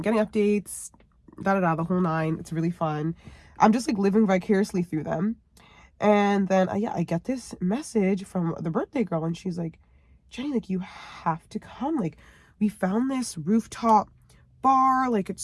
getting updates, the whole nine. It's really fun. I'm just like living vicariously through them. And then I get this message from the birthday girl, and she's like, Jenny, like, you have to come. Like, we found this rooftop bar. Like, it's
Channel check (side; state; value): both; identical; correlation 1.00